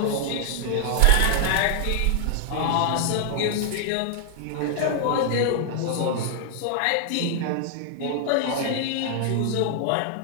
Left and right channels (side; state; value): both; different; correlation 0.00